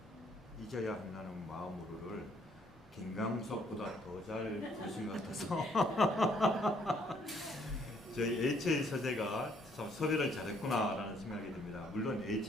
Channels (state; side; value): normal; both; correlation 0.66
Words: 잊어야 한다는 마음으로를 김광석보다 더 잘 부르신 것 같아서 저희 HA 서재가 참 섭외를 잘했구나라는 생각이 듭니다. 물론